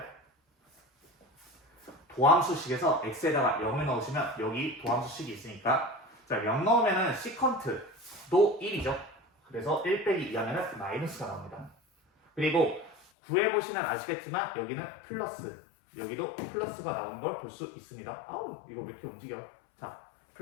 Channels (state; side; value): drops out; right; at 13.1 s